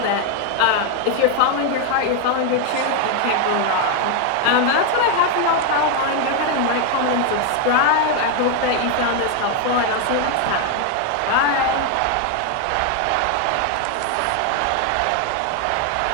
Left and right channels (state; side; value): different; both; correlation 0.01